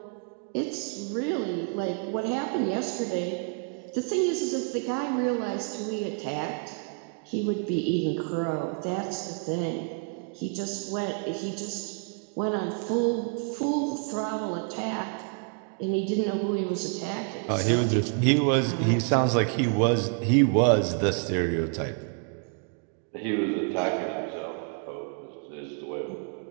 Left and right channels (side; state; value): left; quieter; 38.4 dB